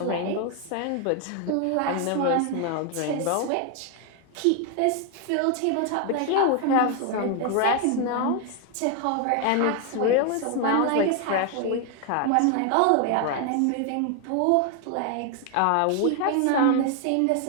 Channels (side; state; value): both; different; correlation 0.01